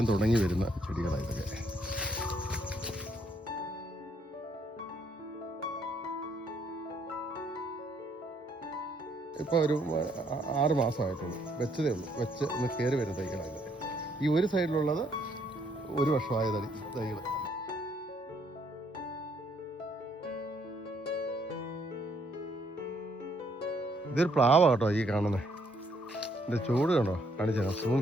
തുടങ്ങി വരുന്ന ചെടികളാണ് ഇതൊക്കെ. ഇപ്പോൾ ഒരു 6 മാസമായിട്ടുള്ളൂ, വെച്ചതേ ഉള്ളൂ. വെച്ച് ഒന്ന് കയറി വരുന്ന തൈകളാണ്. ഈ ഒരു സൈഡിലുള്ളത് 1 വർഷമായ തൈകൾ. ഇതൊരു പ്ലാവാ കേട്ടോ ഈ കാണുന്നത്. ഇതിൻ്റെ ചൂട് കണ്ടോ, കാണിച്ചാൽ സൂം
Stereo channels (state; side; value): normal; both; correlation 0.69